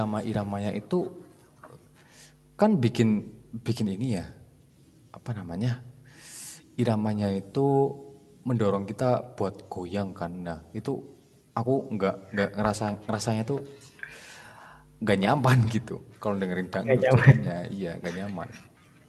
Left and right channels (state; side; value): identical; both; correlation 1.00